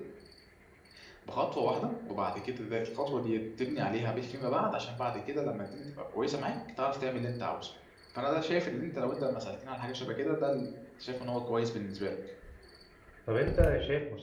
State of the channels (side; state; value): both; identical; correlation 1.00